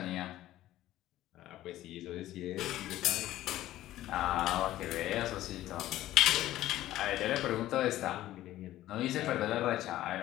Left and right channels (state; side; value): quieter; right; 14.5 dB